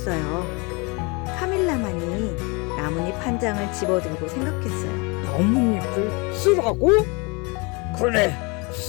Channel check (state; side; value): quieter; right; 29.5 dB